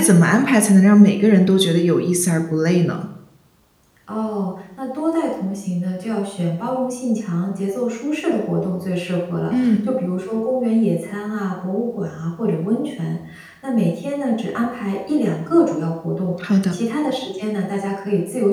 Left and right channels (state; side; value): identical; both; correlation 1.00